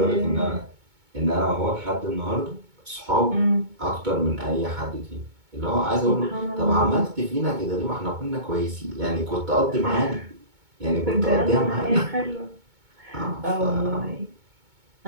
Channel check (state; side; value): late; left; 2.2 ms